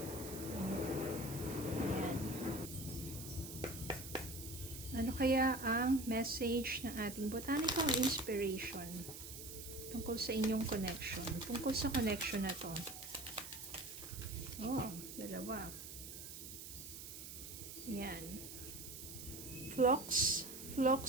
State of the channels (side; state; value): right; noise; hiss, 10 dB below the sound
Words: Ayan. Ano kaya ang message ng ating botanical inspiration tungkol sa inyong connection? Tungkol sa connection na to. Dalawa. Yan. Phlox